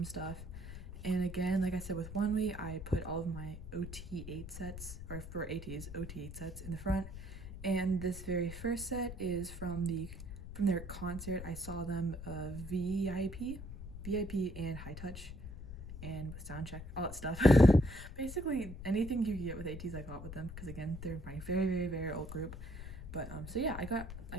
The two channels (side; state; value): left; noise; rumble, 10 dB below the sound